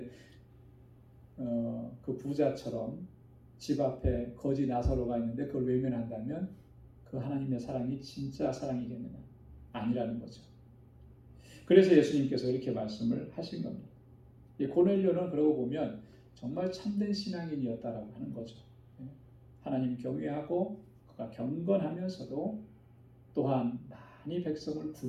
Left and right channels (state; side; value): identical; both; correlation 1.00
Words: 그 부자처럼 집 앞에 거지 나사로가 있는데 그걸 외면한다면 그 하나님의 사랑이 진짜 사랑이겠느냐? 아니라는 거죠. 그래서 예수님께서 이렇게 말씀을 하신 겁니다. 고넬료는 그러고 보면 정말 참된 신앙인이었다라고 하는 거죠. 하나님 경외하고 그가 경건하면서도 또한 많이 백성을